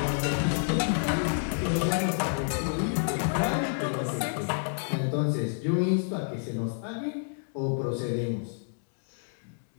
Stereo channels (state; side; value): silent; right; digital silence